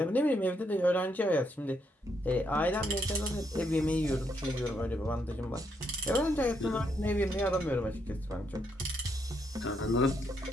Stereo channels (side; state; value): both; normal; correlation 0.77